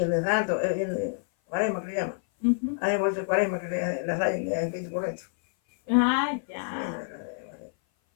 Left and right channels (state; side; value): silent; right; 57 dB below the other